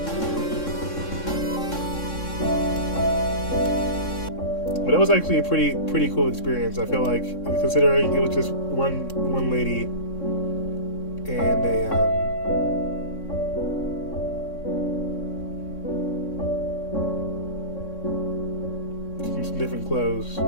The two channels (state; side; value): late; right; 3.6 ms